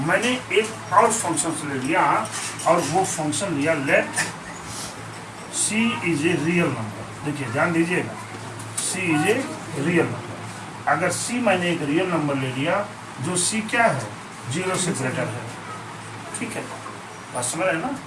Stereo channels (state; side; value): identical; both; correlation 1.00